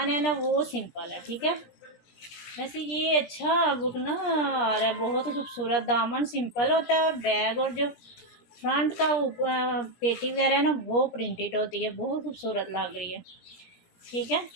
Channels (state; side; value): late; right; 17 ms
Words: है ना वो सिंपल है, ठीक है। वैसे ये अच्छा बुक ना आ रहा है, बहुत खूबसूरत। दामन सिंपल होता है और बैग और जो फ्रंट का ऊपर पेटी वगैरह है ना वो प्रिंटेड होती है, बहुत खूबसूरत लग रही है, ठीक है।